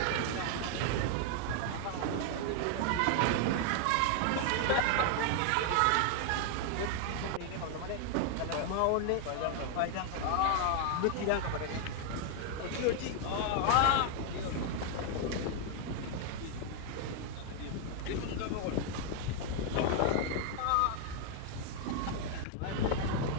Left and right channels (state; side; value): different; both; correlation 0.00